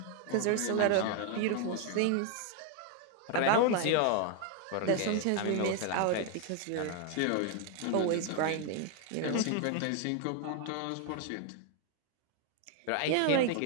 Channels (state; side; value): different; both; correlation 0.01